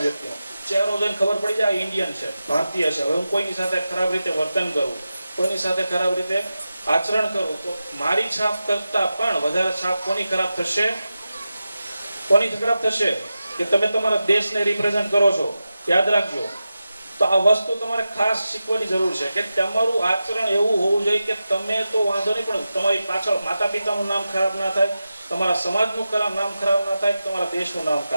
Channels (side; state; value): both; inverted; correlation -0.92